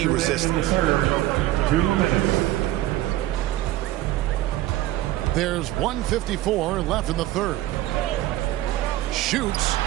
resistance. 2 minutes. There's 1:54 left in the third. Shoots.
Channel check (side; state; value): left; quieter; 15.2 dB